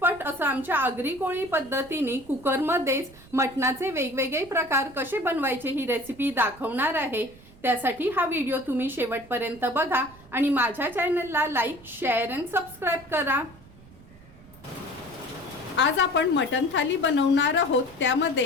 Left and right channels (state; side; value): noise; right; rumble, 23 dB below the sound